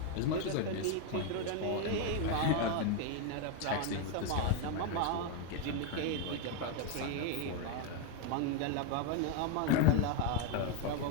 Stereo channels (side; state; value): both; different; correlation 0.01